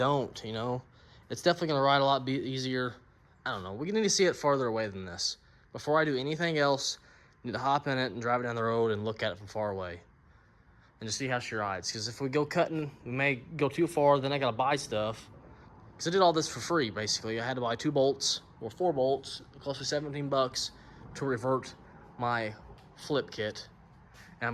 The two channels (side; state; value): both; identical; correlation 1.00